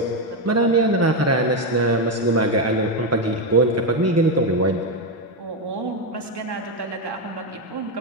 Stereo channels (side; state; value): both; normal; correlation 0.07